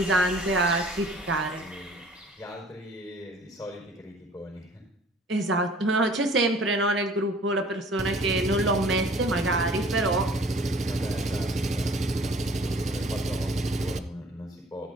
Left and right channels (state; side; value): normal; both; correlation 0.51